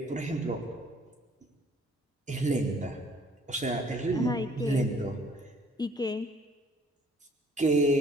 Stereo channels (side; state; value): both; normal; correlation 0.58